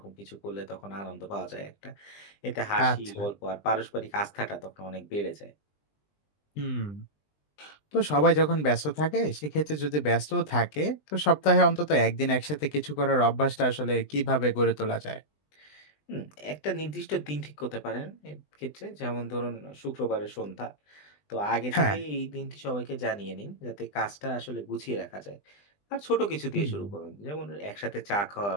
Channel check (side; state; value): right; late; 20 ms